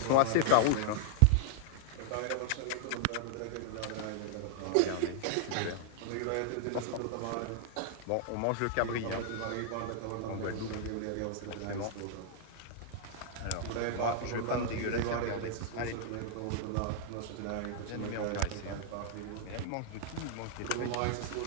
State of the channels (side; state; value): both; different; correlation 0.00